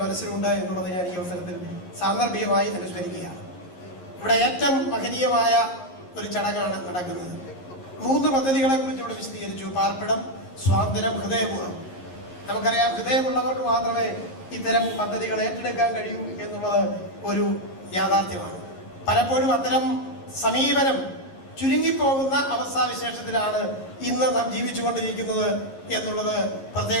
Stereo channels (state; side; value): late; right; 11 ms